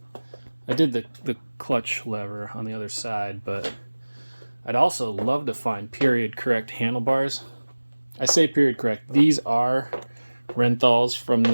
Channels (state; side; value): inverted; both; correlation -1.00